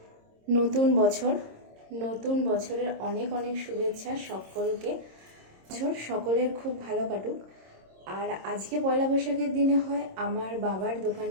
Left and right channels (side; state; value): left; late; 26 ms